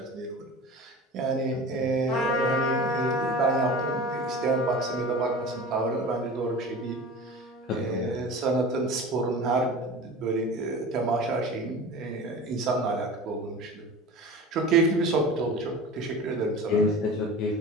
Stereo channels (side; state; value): both; normal; correlation 0.35